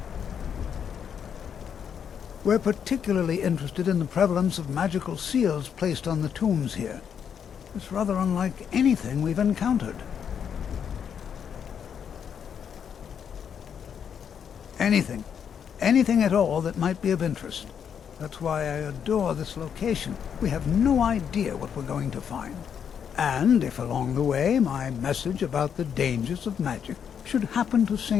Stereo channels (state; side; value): quieter; right; 7.8 dB